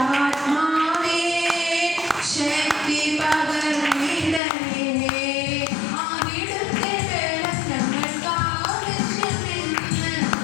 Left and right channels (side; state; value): right; drops out; at 4.4 s